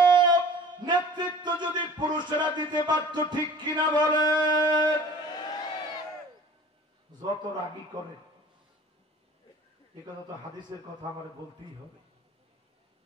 নেতৃত্ব যদি পুরুষেরা দিতে পারত, ঠিক কিনা বলে? যত রাগী করে, এ কথা তো হাদিসের কথা আমার বলতেই হবে,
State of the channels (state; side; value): normal; both; correlation 0.45